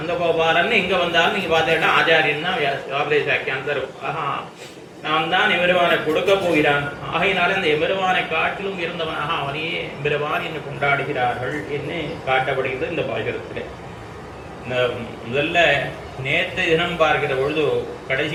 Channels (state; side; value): identical; both; correlation 1.00